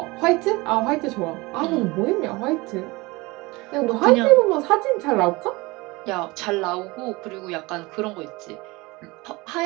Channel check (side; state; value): left; quieter; 23.2 dB